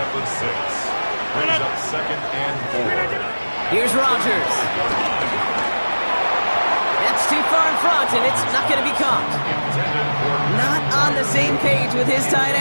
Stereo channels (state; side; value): inverted; both; correlation -1.00